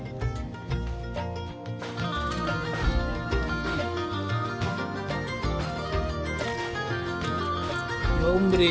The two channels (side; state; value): both; identical; correlation 1.00